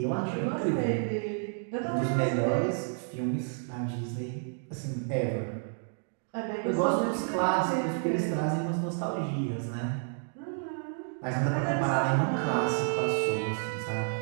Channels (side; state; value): left; silent; 58 dB below the other